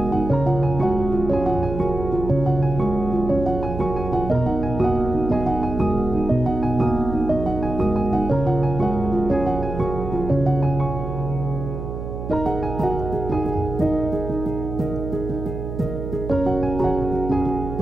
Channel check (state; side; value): noise; right; hum, 6 dB below the sound